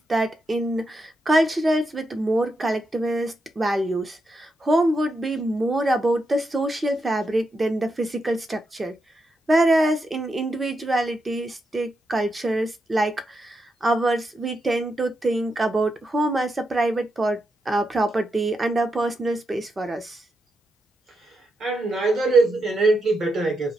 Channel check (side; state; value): both; normal; correlation 0.84